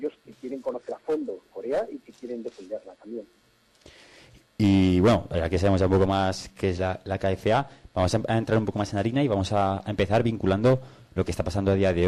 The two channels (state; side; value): identical; both; correlation 1.00